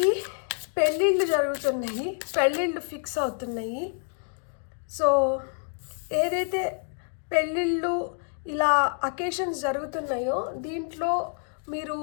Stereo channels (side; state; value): right; silent; 60 dB below the other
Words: పెళ్ళిళ్ళు జరుగుతున్నాయి, పెళ్ళిళ్ళు ఫిక్స్ అవుతున్నాయి. సో ఏదైతే పెళ్ళిళ్ళు ఇలా అకేషన్స్ జరుగుతున్నాయో దీంట్లో మీరు